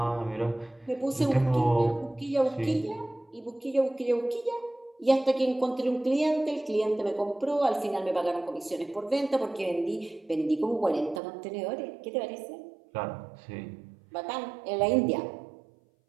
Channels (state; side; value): drops out; left; at 11.2 s